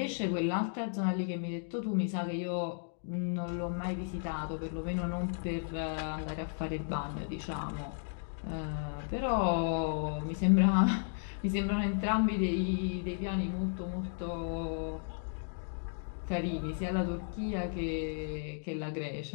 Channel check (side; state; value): right; silent; digital silence